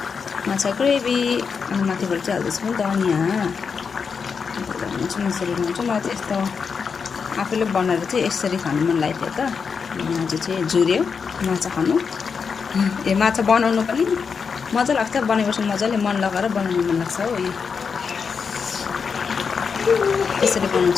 माछा ग्रेभी अनि माथिबाट चाहिँ हाल्दैछु नि धनियाँ यसरी बनाउँछु। मलाई चाहिँ यस्तो आफूले बनाएर चाहिँ यसरी खानु मन लागेको थियो त। आज चाहिँ जुर्यो माछा खानु। यो माछा बनाउनु पनि मजा लाग्छ, बनाएपछि मजाले मन लगाएर बनाउनु मन लाग्छ हो। यसरी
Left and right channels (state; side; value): quieter; right; 5.8 dB